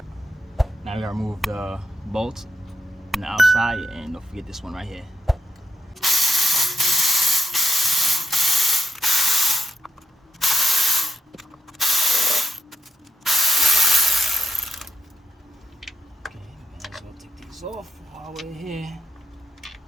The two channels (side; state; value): both; normal; correlation 0.82